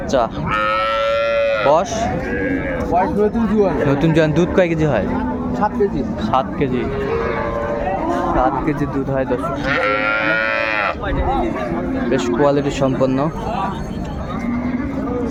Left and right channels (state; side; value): identical; both; correlation 1.00